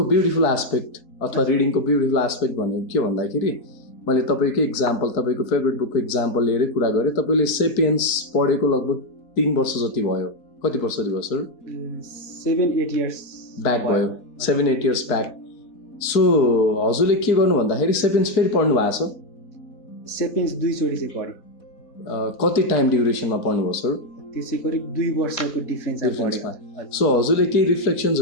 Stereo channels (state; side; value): late; right; 4.6 ms